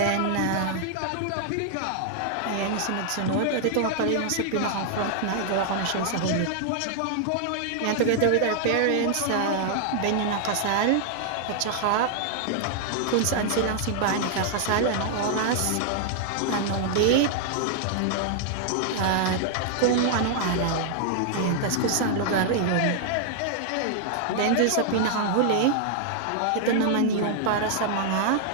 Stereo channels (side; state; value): both; different; correlation 0.00